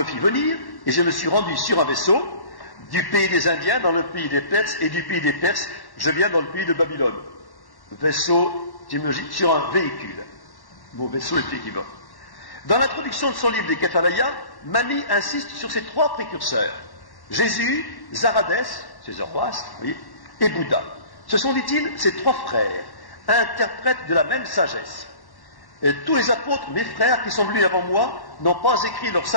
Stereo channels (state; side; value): late; right; 1.1 ms